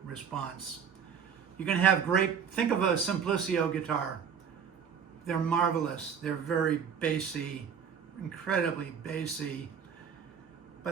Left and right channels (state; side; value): quieter; left; 7.2 dB